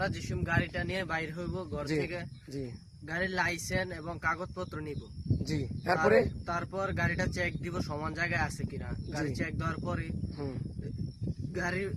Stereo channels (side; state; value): both; identical; correlation 1.00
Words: যেসব গাড়িটা নিয়ে বাইর হইব ঘর থেকে, জি গাড়ির লাইসেন্স এবং কাগজপত্র নিব। জি, তারপরে তারপর গাড়িটা চেক দিব সমান জায়গায় আছে কিনা। গাড়ি চেক দেওয়ার পরে গাড়ির